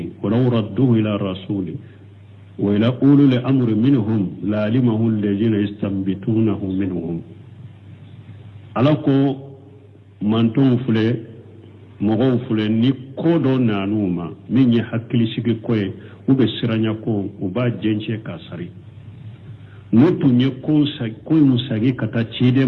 wa law radduhu ila rasuli wa ila ulul amri minhum la alimahu alladhina yastanbitunahu minhum alako manton fule mogo fule ni kodo nanuma min ye hakkili sigi koye ube siranya ko uba jenche kasari notu nye koy musagi kata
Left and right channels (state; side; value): identical; both; correlation 1.00